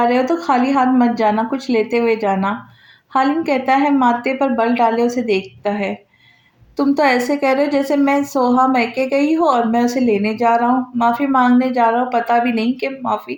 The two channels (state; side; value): identical; both; correlation 1.00